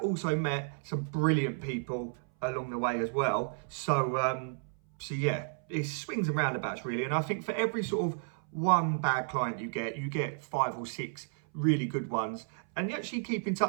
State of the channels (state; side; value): silent; left; 56 dB below the other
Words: also met some brilliant people along the way as well. So, yeah, it swings and roundabouts really. And I think for every sort of one bad client you get 5 or 6 really good ones. And you actually keep in